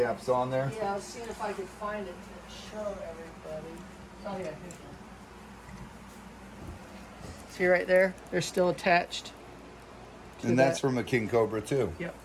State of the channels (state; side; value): identical; both; correlation 1.00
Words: on there. Yeah, I was seeing if I could find it to show everybody. Oh yeah, here's one. See right there? They're still attached. And that's from a king cobra too. Yep.